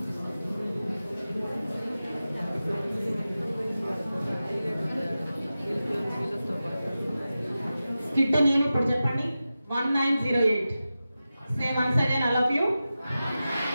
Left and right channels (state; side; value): inverted; both; correlation -0.94